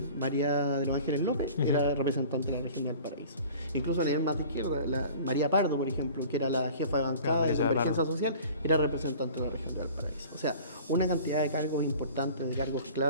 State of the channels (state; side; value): inverted; both; correlation -0.45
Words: María de los Ángeles López, era representante de la región de Valparaíso. Incluso a nivel más de izquierda, María Pardo, por ejemplo, que era la jefa de bancada de Convergencia Social, era representante de la región de Valparaíso. O sea, una cantidad de cargos importantes, de cargos